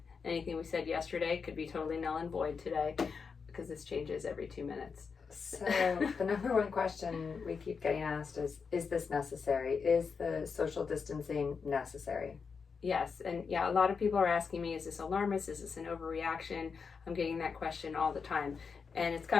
Anything we said yesterday could be totally null and void today because this changes every 2 minutes. So the number one question we keep getting asked is this necessary? Is the social distancing necessary? Yes, and yeah, a lot of people are asking me, is this alarmist? Is this an overreaction? I'm getting that question all the time. And it's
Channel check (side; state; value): right; quieter; 5.5 dB